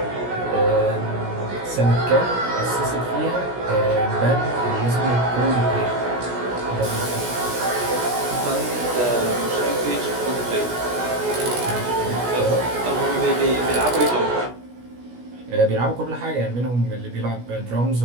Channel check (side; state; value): left; late; 16 ms